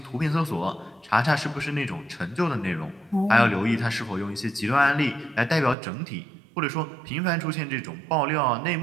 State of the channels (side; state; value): left; drops out; at 5.8 s